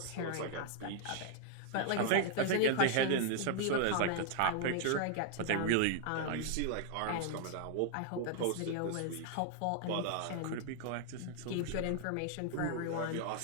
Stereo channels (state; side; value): different; both; correlation 0.00